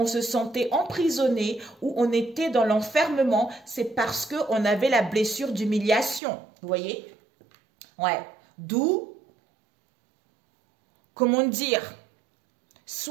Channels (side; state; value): left; drops out; at 6.2 s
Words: se sentait emprisonné ou on était dans l'enfermement. C'est parce qu'on avait la blessure d'humiliation. Vous voyez? Ouais. D'où, comment dire,